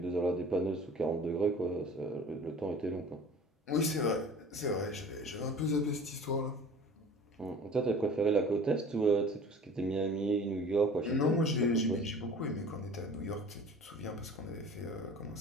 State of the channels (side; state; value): both; normal; correlation 0.43